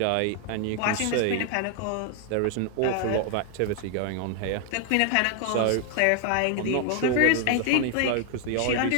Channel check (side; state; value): both; different; correlation 0.00